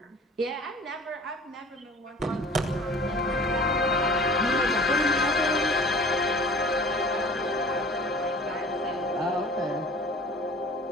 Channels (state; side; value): normal; both; correlation 0.45